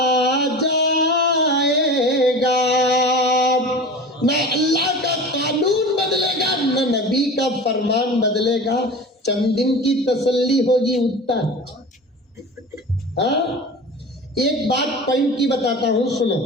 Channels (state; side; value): normal; both; correlation 0.34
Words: जाएगा। ना अल्लाह का कानून बदलेगा, ना नबी का फरमान बदलेगा। चंद दिन की तसल्ली होगी उतना। हाँ, एक बात पॉइंट की बताता हूं, सुनो।